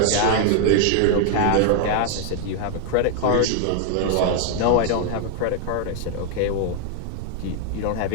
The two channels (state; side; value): different; both; correlation 0.00